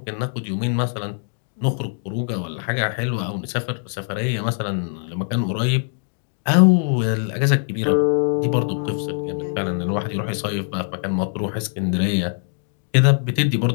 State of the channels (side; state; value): right; silent; 55 dB below the other